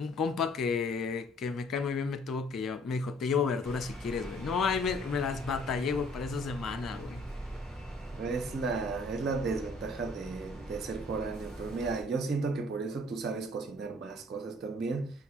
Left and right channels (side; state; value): both; normal; correlation 0.58